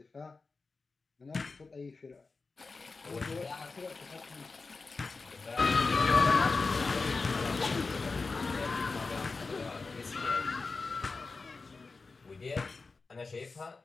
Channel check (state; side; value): quieter; right; 4.1 dB